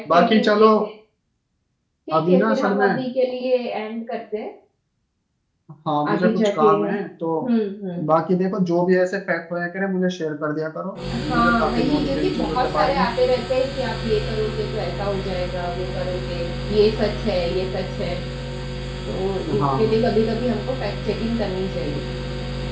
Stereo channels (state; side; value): identical; both; correlation 1.00